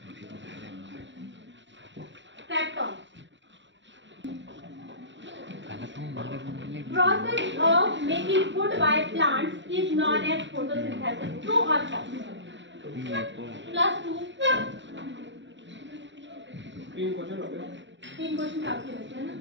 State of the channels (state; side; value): late; left; 0.54 ms